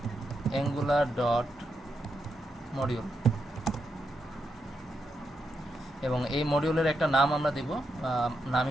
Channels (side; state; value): both; normal; correlation 0.83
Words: angular dot module, এবং এই মডিউলের একটা নাম আমরা দেব। নাম